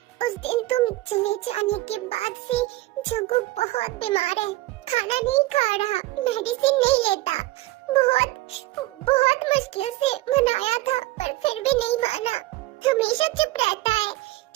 उस दिन तुम चले जाने के बाद से जग्गू बहुत बीमार है, खाना नहीं खा रहा, मेडिसिन नहीं लेता। बहुत मुश्किल से मनाया था, पर फिर भी नहीं माना। हमेशा चुप रहता है,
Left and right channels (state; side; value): quieter; left; 18.4 dB